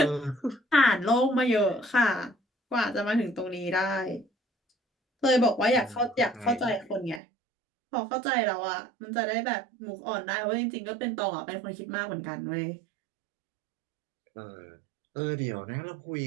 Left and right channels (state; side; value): drops out; left; at 7.2 s